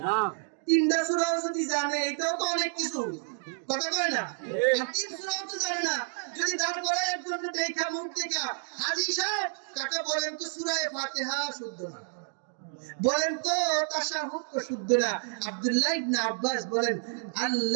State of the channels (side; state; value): left; silent; 58 dB below the other